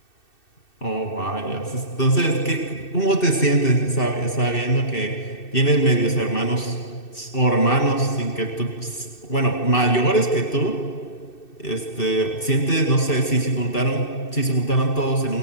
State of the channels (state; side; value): late; right; 2.6 ms